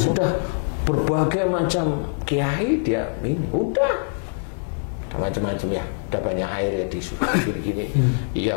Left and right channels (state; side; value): silent; right; digital silence